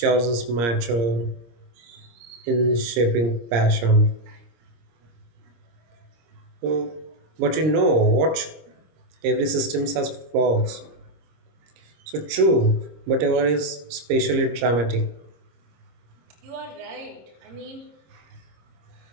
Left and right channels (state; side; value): late; left; 26 ms